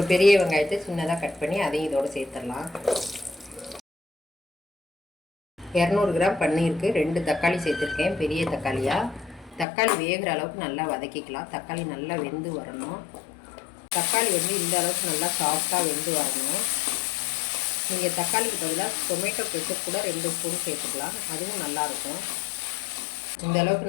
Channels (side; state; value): right; drops out; at 9.7 s